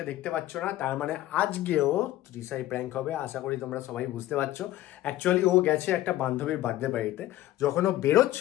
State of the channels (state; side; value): quieter; right; 14.8 dB